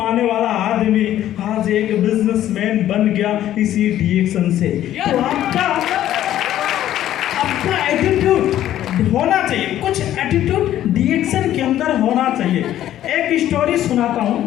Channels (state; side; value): quieter; right; 12.4 dB